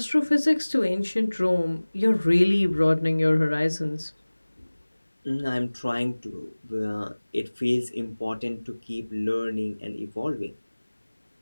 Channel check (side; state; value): both; inverted; correlation -1.00